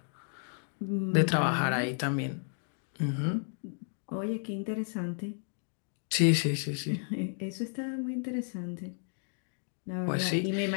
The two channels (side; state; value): right; silent; 56 dB below the other